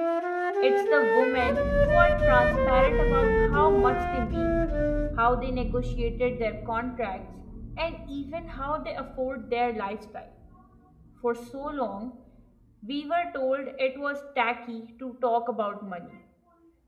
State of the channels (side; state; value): both; identical; correlation 1.00